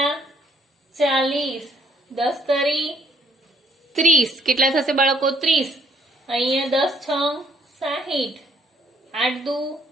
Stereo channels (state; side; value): normal; both; correlation 0.67